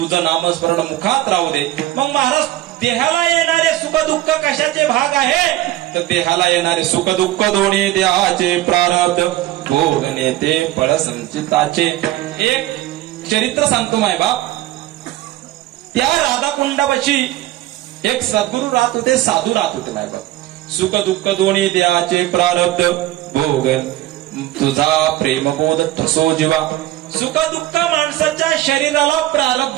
नामस्मरण मुखात राहू दे. मग महाराज देहाला येणारे सुख दुःख कशाचे भाग आहे तर देहाला येणारे सुख दुःख दोन्ही देहाचे प्रारब्ध भोगणे ते फळ संचिताचे. एक चरित्र सांगतो माय बाप. त्या राधाकुंडापाशी एक सद्गुरू राहत होते साधू राहत होते माय बाप. सुख दुःख दोन्ही देहाचे प्रारब्ध भोगन तुझा प्रेमबोध ठसो जीवा. सुख दुःख माणसाच्या शरीराला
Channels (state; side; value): quieter; left; 15.3 dB